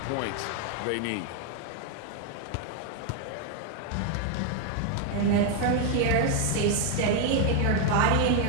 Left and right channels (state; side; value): different; both; correlation 0.01